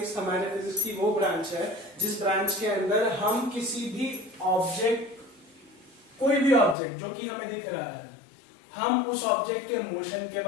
हमारे फिजिक्स की वो ब्रांच है जिस ब्रांच के अंदर हम किसी भी ऑब्जेक्ट, कोई भी ऑब्जेक्ट जो कि हमें दिख रहा है, हम उस ऑब्जेक्ट के मोशन के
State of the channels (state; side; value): drops out; right; at 6.8 s